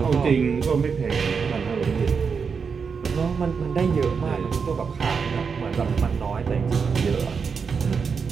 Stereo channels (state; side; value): quieter; left; 5.8 dB